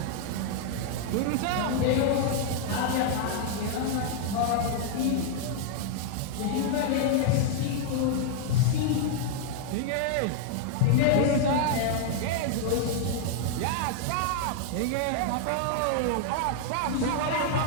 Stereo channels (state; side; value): different; both; correlation 0.00